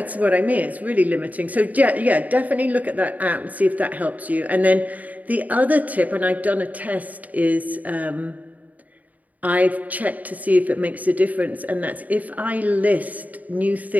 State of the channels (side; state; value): left; late; 0.075 ms